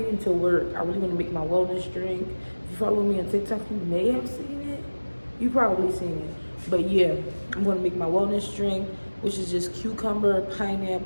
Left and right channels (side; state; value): both; inverted; correlation -1.00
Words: into work, I really want to make my wellness drink. If you follow me on TikTok, you may have seen it. You probably seen it. But yeah, I'm going to make my wellness drink, which is just cucumber,